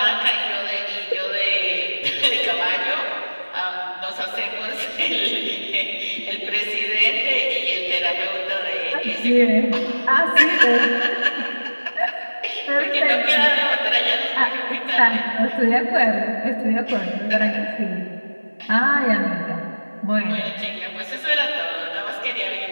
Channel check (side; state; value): both; inverted; correlation -1.00